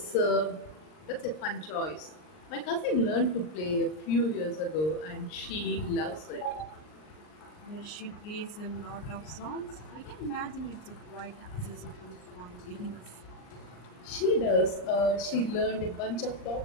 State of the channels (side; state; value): right; late; 39 ms